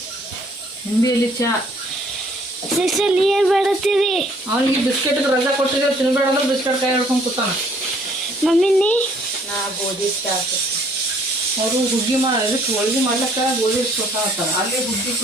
ನಿಂಬಿ ಎಲ್ಲಿ ಚಾ ಸಿಸ್ಟಲ್ಲಿ ಏನ್ ಮಾಡತ್ತೀರಿ ಅವನಿಗೆ ಬಿಸ್ಕೆಟ್ ರಜಾ ಕೊಟ್ಟಿದ್ರೆ ತಿನ್ಬೇಡ ಅಂದ್ರೆ ಬಿಸ್ಕೆಟ್ ಕೈ ಹಿಡ್ಕೊಂಡು ಕೂತಾನ ಮಮ್ಮಿನಿ ನಾ ಗೋಧಿ ಚಾ ಅವರು ಹುಗ್ಗಿ ಇದಕ್ಕೆ ಹೋಳ್ಗಿ ಮಾಡ್ಲಕ್ಕ ಗೋಧಿ ಕೊಡ್ತಾರ ಅಲ್ಲೇ ಹುಗ್ಗಿ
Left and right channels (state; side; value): normal; both; correlation 0.61